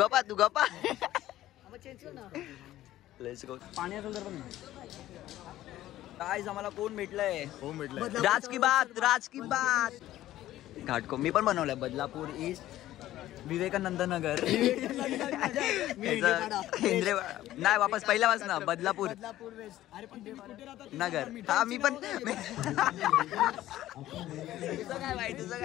मग चेंज कर ना. Let's go. पाणी असेल तर पण गाइस आम्हाला कोण भेटलंय? राज की बात. घाटको मी पण बनवलंय. बदलापूर ईस्ट, विवेकानंद नगर, हेंद्रे नाही वापस पहिल्यापासून बदलापूर वेस्ट. अरे पण तुम्ही कुठे राहतात? नगर. हा मी पण. तुझं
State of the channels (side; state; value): right; quieter; 14.3 dB